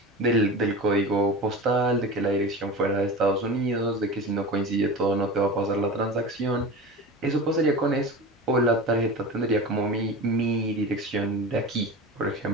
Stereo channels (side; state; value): both; normal; correlation 0.31